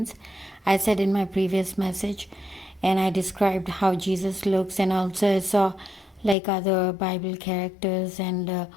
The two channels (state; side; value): drops out; right; at 6.4 s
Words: I said in my previous message, and I described how Jesus looks, and also I saw like other Bible characters uh,